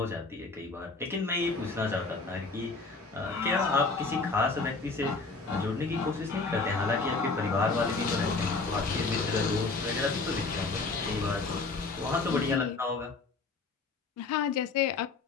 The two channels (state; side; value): quieter; right; 4.0 dB